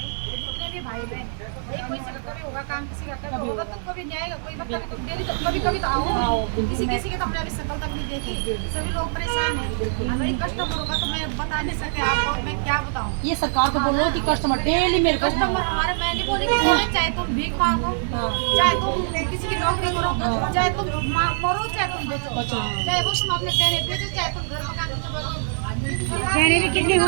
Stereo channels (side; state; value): left; silent; digital silence